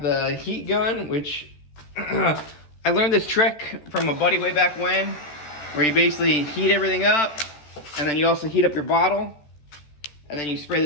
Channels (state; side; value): late; right; 14 ms